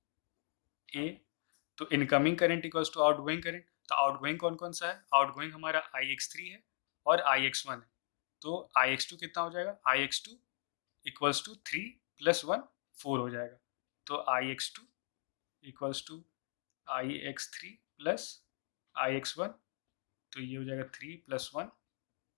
ए, तो incoming current equals to outgoing current. तो आउटगोइंग कौन कौन सा है, आउटगोइंग हमारा IX3 है और IX1 है। तो IX2 कितना हो जाएगा, IX2 इक्वल्स टू 3 + 1 4 हो जाएगा। तो IX2 equals to IX3 + IX1, तो ये हो जाएगा 3 + 1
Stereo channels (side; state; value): right; silent; 52 dB below the other